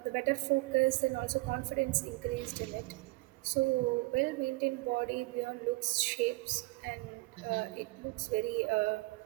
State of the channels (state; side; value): quieter; left; 23.1 dB